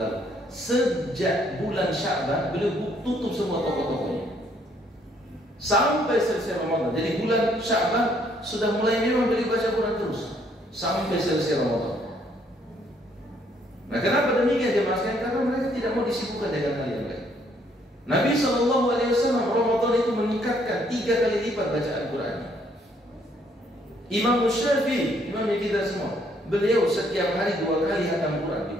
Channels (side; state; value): both; normal; correlation 0.67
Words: sejak bulan Sya'ban beliau tutup semua toko-tokonya sampai selesai Ramadan. Jadi bulan Sya'ban sudah mulai memang beliau baca Quran terus sampai selesai Ramadan. Nah, kenapa demikian jemaah sekalian? Karena mereka tidak mau disibukkan dengan hal yang lain. Nabi SAW Ramadan itu meningkatkan 3 kali lipat bacaan Quran. Imam Syafi'i, imam kita semua, beliau setiap hari 2 kali khatam Quran di